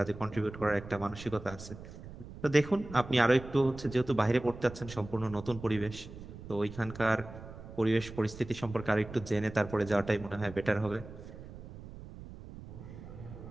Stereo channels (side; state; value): right; noise; rumble, 14 dB below the sound